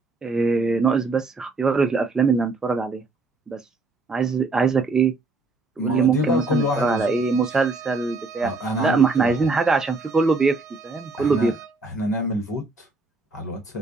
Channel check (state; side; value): quieter; left; 3.6 dB